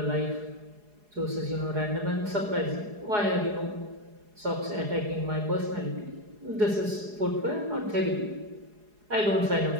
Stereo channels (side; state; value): left; late; 4.8 ms